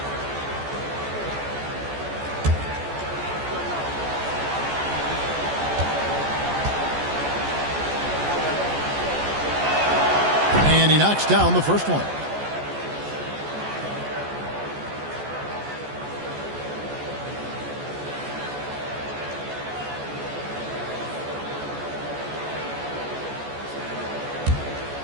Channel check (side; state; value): left; late; 14 ms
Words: And he knocks down the first one.